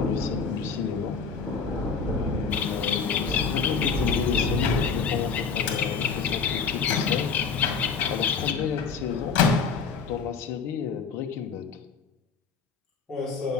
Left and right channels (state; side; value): quieter; right; 5.5 dB